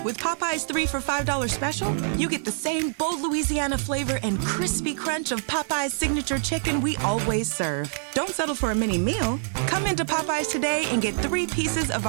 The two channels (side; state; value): left; silent; digital silence